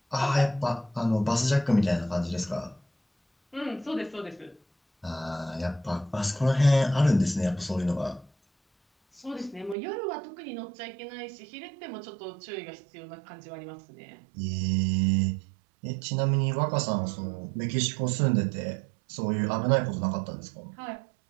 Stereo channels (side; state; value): left; drops out; at 9.8 s